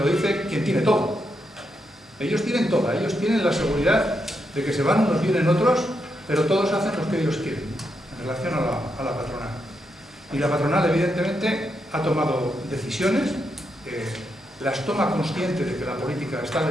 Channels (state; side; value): normal; both; correlation 0.82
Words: dice quien tiene todo. Ellos tienen todo, ellos tienen la seguridad de que se van unos, vienen otros, pero todos hacen lo que ellos quieren en relación a la patronal. Y la patronal, evidentemente, ha tomado decisiones, las toma consciente de que la política está